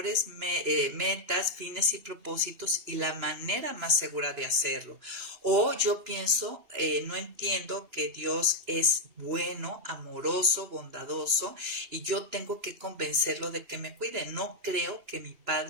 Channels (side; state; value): left; late; 2.9 ms